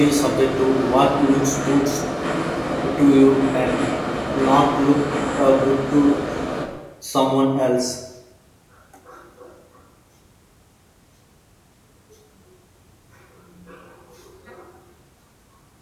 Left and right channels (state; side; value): identical; both; correlation 1.00